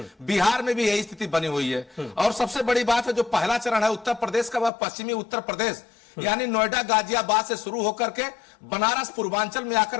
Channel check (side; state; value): right; drops out; at 4.7 s